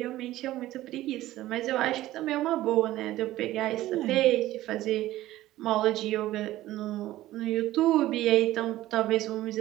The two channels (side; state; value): left; quieter; 15.4 dB